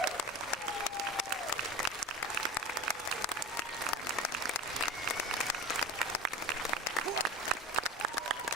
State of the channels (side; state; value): both; normal; correlation 0.30